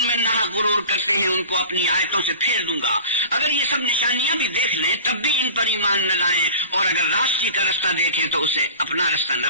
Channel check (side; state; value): both; inverted; correlation -0.39